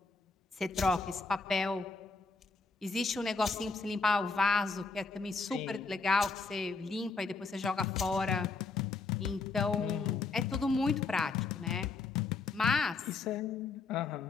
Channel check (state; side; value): quieter; right; 4.1 dB